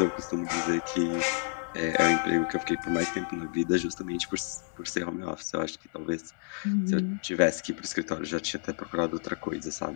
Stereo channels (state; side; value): silent; right; 57 dB below the other